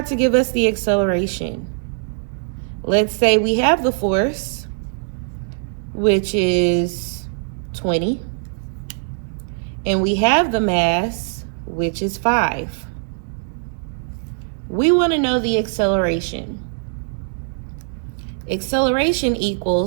to give us the acceleration. Let's say we have the force, which is 20, and we have the mass, which is 5. We want to know the acceleration. Acceleration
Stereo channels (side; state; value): left; silent; 65 dB below the other